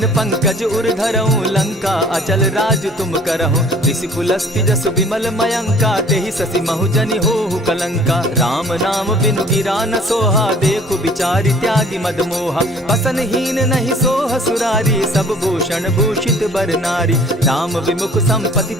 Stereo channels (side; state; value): both; normal; correlation 0.52